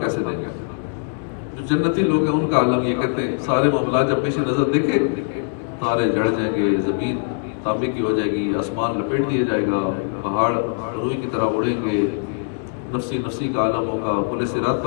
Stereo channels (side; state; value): right; silent; digital silence